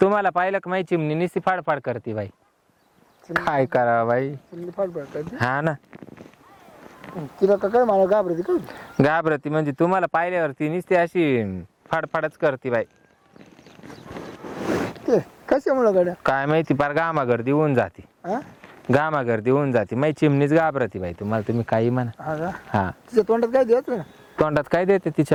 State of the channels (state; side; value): identical; both; correlation 1.00